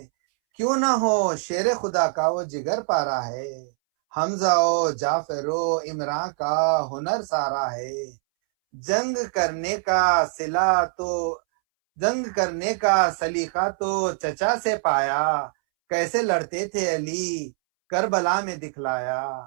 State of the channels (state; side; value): silent; left; 63 dB below the other